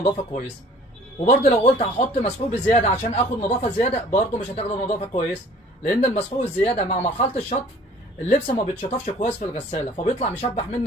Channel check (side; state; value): both; normal; correlation 0.52